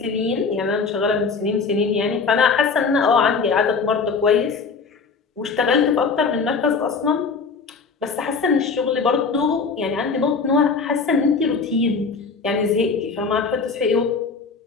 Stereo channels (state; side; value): quieter; right; 4.9 dB